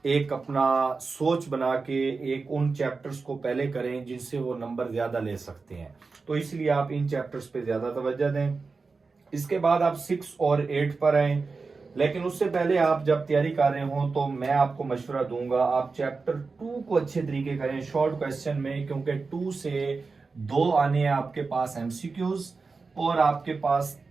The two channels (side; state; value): left; quieter; 4.3 dB